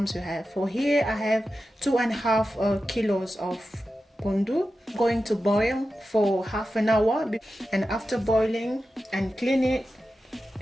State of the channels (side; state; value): both; normal; correlation 0.92